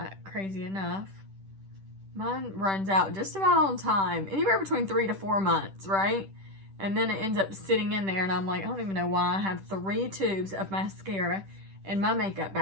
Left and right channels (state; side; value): late; left; 10 ms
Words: crazy enough. Mine runs out just about on time, anywhere between 3 to 4 months, right? And then it ends up sitting in there, and I'm like, I don't even know why I have 3 tubes of mascara in my makeup